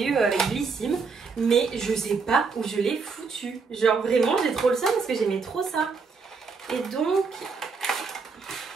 eu avec Blissim mais je sais pas où je l'ai foutu. Genre vraiment j'ai trop le seum parce que j'aimais trop ça. Et donc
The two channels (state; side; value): quieter; left; 4.9 dB